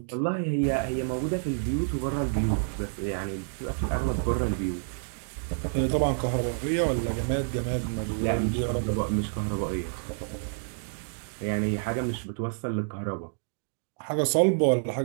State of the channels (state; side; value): silent; left; digital silence